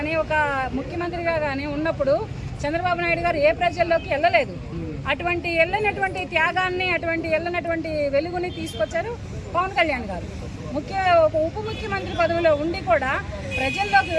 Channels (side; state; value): both; identical; correlation 1.00